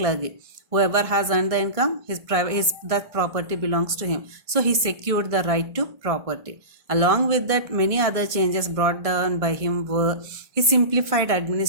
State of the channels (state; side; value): late; left; 1.6 ms